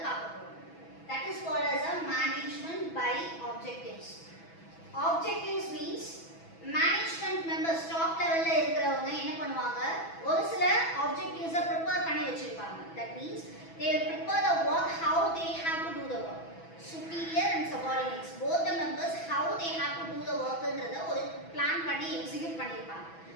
பார்க்க போறோம். That is called as a management by objectives. Objectives means management members top level ல இருக்கிறவங்க என்ன பண்ணுவாங்க, ஒரு சில objectives prepare பண்ணி வச்சிருப்பாங்க. That means they will prepare the work how they have to do the work. Superior and subordinates both the members how they have to do the work ன்றத ஒரு பிளான் பண்ணி எக்ஸிக்யூட் பண்ணிருப்பாங்க.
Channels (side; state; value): right; late; 6.1 ms